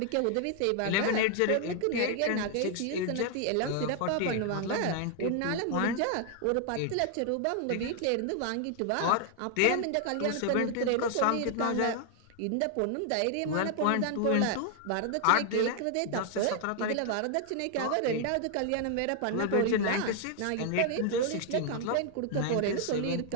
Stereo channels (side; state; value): both; different; correlation 0.00